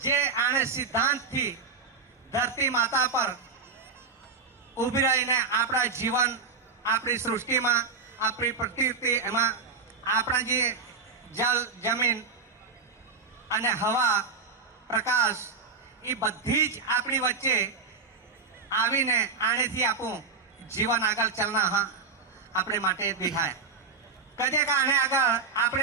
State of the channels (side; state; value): left; quieter; 4.6 dB